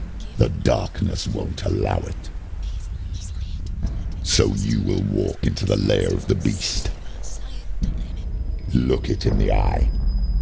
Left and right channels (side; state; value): both; identical; correlation 1.00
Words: The darkness won't allow it. So you will walk into the lair of the beast. Look it in the eye,